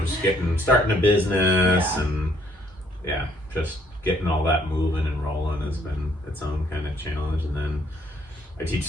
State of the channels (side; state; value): both; normal; correlation 0.66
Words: just starting a business, and just getting all that moving and rolling has been its own kind of challenge. And then I teach